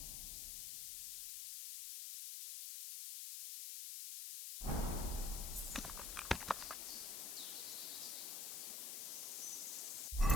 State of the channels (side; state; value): left; noise; hiss, 4 dB below the sound